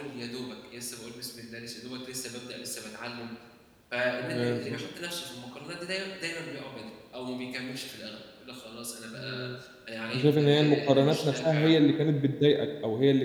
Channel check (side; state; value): both; identical; correlation 1.00